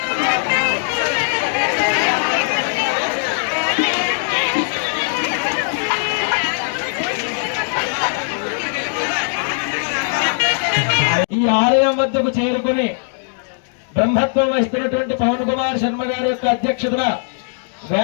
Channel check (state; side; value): silent; right; digital silence